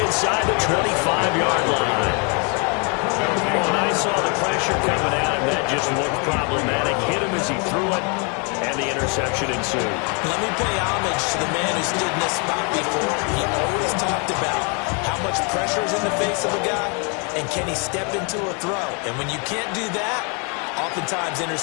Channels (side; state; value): right; quieter; 35.3 dB